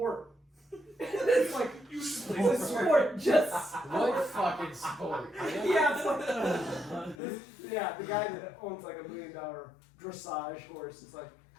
It's like You should it's play a sport, just What fucking sport? yeah, it's like yeah, the guy that owns like $1 million dressage horse is like,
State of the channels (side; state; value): right; drops out; at 7.2 s